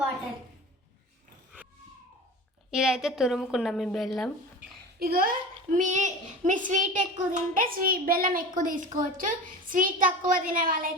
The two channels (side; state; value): both; normal; correlation 0.33